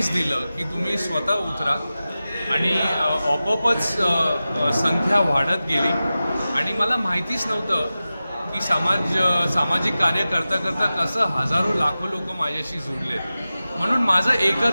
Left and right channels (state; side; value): inverted; both; correlation -0.95